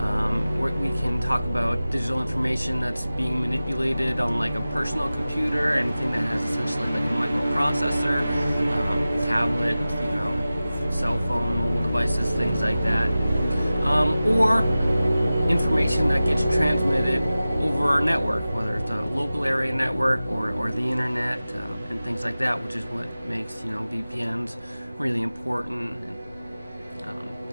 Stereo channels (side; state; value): both; inverted; correlation -0.96